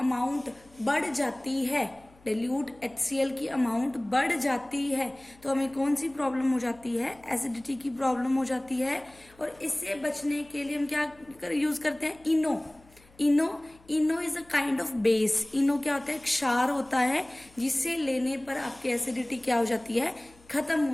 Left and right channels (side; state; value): left; noise; hum, 28 dB below the sound